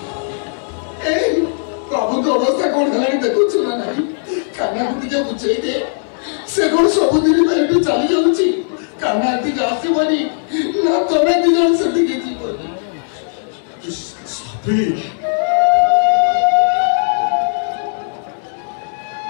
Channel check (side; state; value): right; silent; digital silence